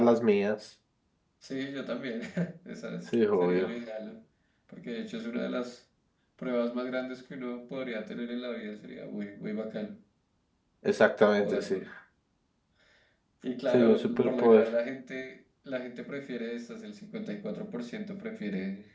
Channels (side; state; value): both; identical; correlation 1.00